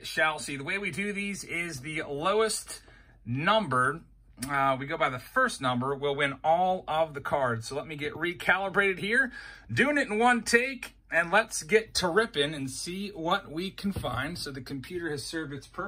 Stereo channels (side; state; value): both; identical; correlation 1.00